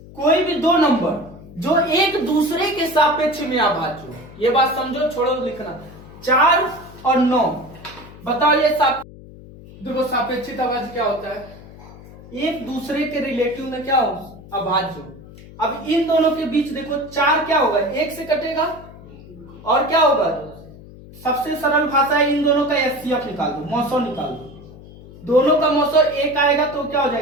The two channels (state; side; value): noise; left; hum, 18 dB below the sound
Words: कोई भी 2 नंबर जो एक दूसरे के सापेक्ष में अभाज्य हो। ये बात समझो, छोड़ो लिखना। 4 और 9 बताओ, ये देखो सापेक्षित अभाज्य क्या होता है, एक दूसरे के रिलेटिव में क्या हो, अभाज्य हो। अब इन दोनों के बीच देखो 4 क्या होगा, 1 से कटेगा, और क्या होगा, सबसे सरल भाषा है, इन दोनों का एचसीएफ निकाल दो, मौसो निकाल दो। दोनों का मौसो 1 आएगा तो क्या हो